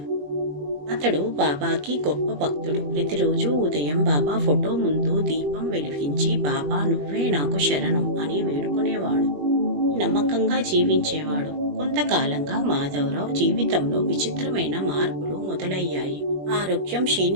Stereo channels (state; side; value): late; left; 21 ms